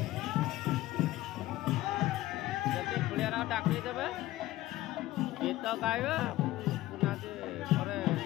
पुलिया डाकी देवे गीत गाइबे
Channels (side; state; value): right; quieter; 16.4 dB